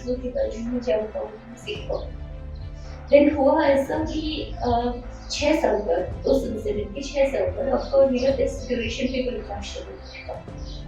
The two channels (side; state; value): both; identical; correlation 1.00